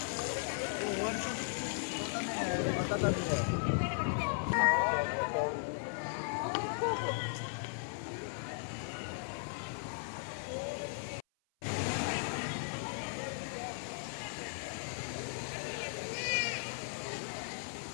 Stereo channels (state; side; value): silent; right; 53 dB below the other